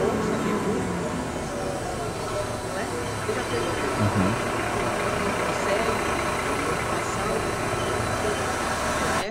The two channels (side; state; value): both; identical; correlation 1.00